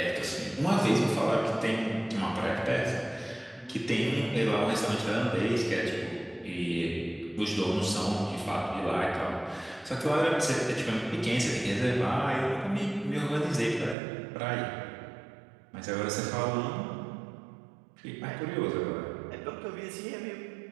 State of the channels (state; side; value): drops out; left; at 14.0 s